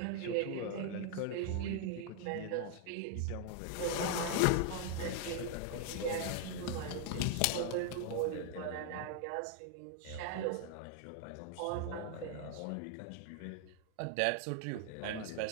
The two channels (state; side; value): different; both; correlation 0.00